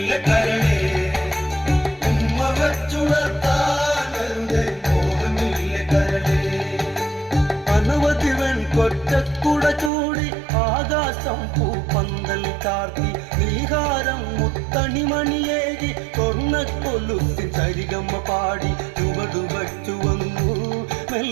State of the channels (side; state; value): left; drops out; at 9.9 s